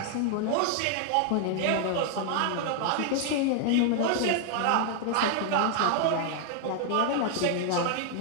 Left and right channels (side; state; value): both; different; correlation 0.00